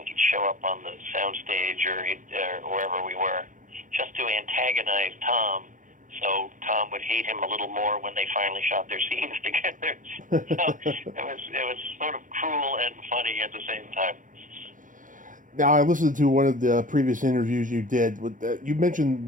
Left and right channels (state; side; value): late; left; 0.38 ms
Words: He'd show up on the soundstage or wherever we were just to antagonize Tom, so Tom would hate him a little more when they finally shot their scenes together. So it was sort of cruel and funny at the same time. Now, I listened to one of the previous interviews you did. You